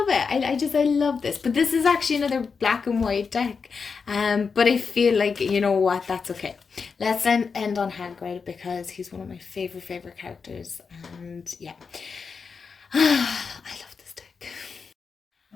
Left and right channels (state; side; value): quieter; right; 5.4 dB